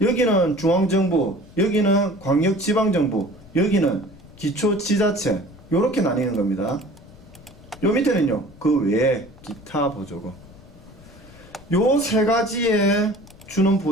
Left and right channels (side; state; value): left; noise; rumble, 22 dB below the sound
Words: 여기는 중앙정부, 여기는 광역지방정부, 여기는 기초지자체, 요렇게 나뉘는 겁니다. 요 밑에는요, 그 외에 기타 보조금. 요 세 가지에 주는